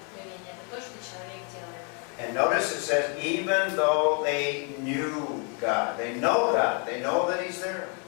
Это то, что человек делает. And notice it says, even though they knew God, they know God, they know that He's there.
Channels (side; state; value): right; quieter; 37.1 dB